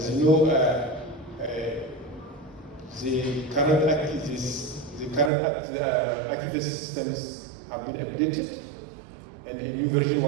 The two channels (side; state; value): left; drops out; at 5.3 s